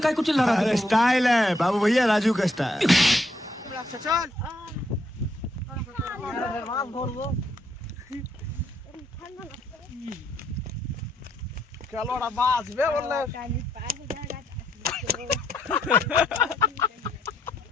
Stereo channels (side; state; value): both; normal; correlation 0.74